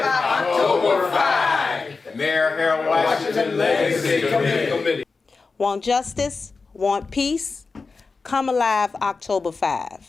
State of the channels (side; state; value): right; quieter; 4.3 dB